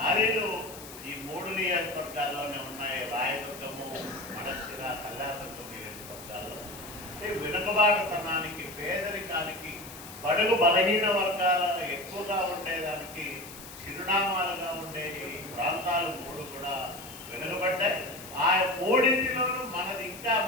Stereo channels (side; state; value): left; noise; hiss, 15 dB below the sound